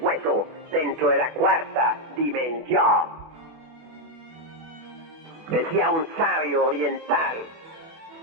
dentro de la cuarta dimensión. Decía un sabio oriental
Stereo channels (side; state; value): left; late; 24 ms